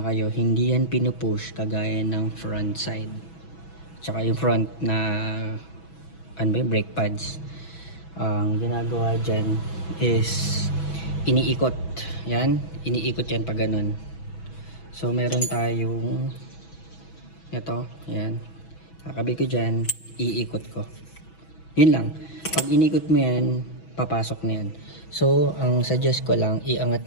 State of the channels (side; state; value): right; late; 6.1 ms